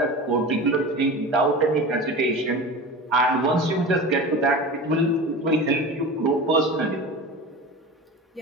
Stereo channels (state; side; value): normal; both; correlation 0.32